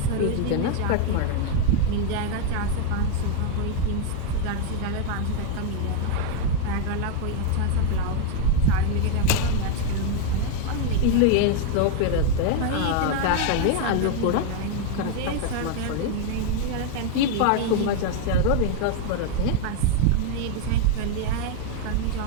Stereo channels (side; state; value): both; different; correlation 0.01